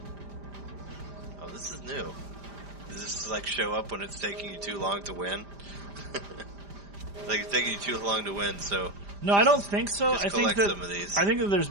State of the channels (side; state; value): left; late; 5.0 ms